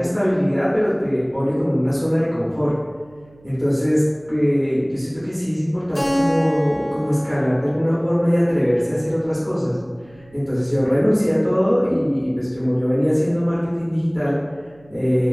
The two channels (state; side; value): noise; right; hum, 28 dB below the sound